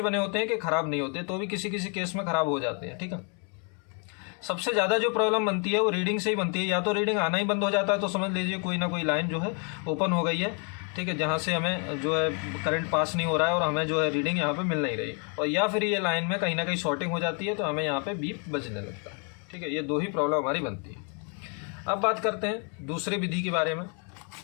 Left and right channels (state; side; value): quieter; right; 38.4 dB